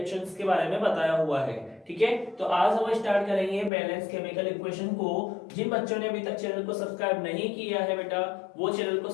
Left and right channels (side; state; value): right; drops out; at 3.7 s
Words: के बारे में बताया हुआ है। ठीक है, तो आज हम स्टार्ट करेंगे बैलेंस केमिकल इक्वेशन को। जिन बच्चों ने अभी तक चैनल को सब्सक्राइब नहीं किया है बेटा, वो चैनल को